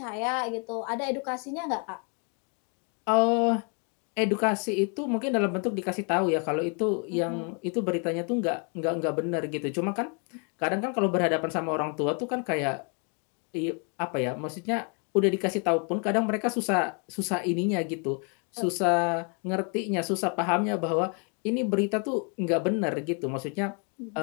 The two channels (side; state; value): right; quieter; 37.8 dB